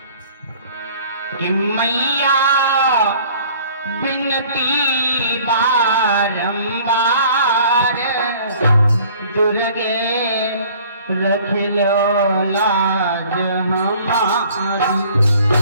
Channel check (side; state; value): both; inverted; correlation -0.52